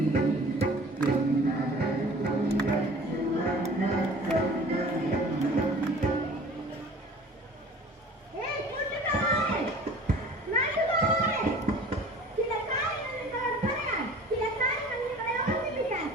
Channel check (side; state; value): both; normal; correlation 0.46